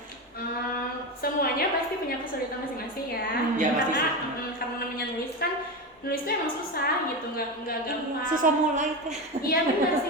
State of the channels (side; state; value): both; normal; correlation 0.19